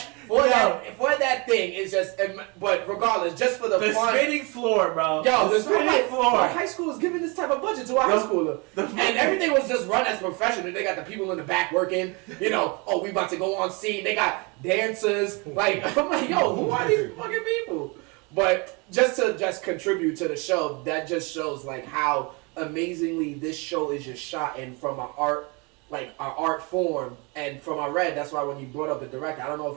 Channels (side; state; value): left; quieter; 29.5 dB